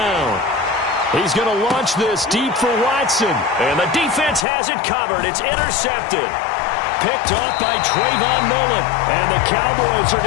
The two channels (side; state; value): right; drops out; at 4.5 s